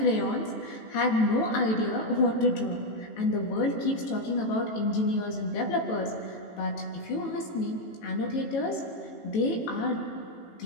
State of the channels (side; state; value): right; late; 18 ms